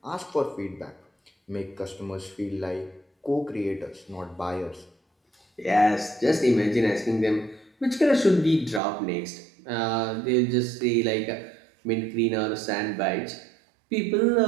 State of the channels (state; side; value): drops out; left; at 8.8 s